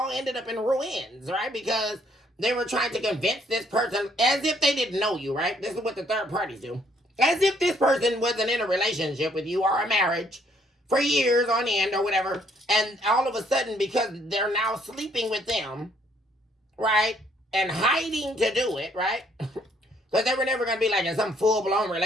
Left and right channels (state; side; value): normal; both; correlation 0.66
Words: ended up in ruins, right? Because they were trying to convince this person as if they didn't know you, right? This is what the third parties do. As if this person wasn't in a relationship with you or a marriage for years on end or whatever. And all of a sudden, because they're now sleeping with them, right? And hiding to do it, right? Because they were never going to be like in some full-blown